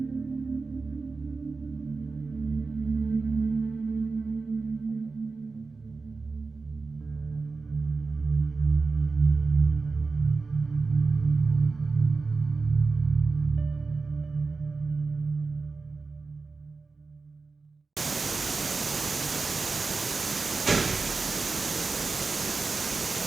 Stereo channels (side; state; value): left; quieter; 4.2 dB